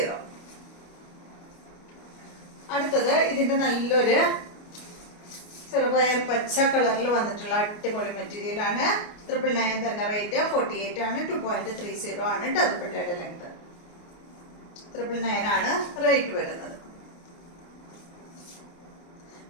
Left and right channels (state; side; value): late; right; 29 ms